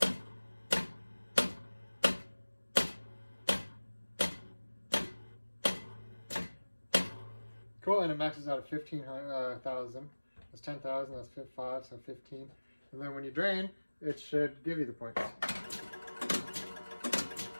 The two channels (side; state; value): both; inverted; correlation -1.00